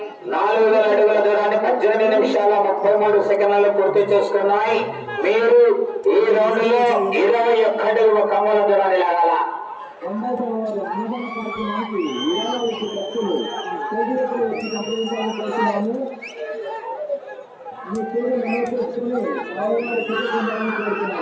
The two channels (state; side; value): identical; both; correlation 1.00